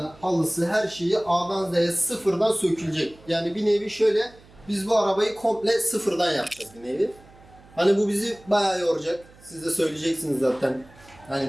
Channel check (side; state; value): right; noise; hum, 25 dB below the sound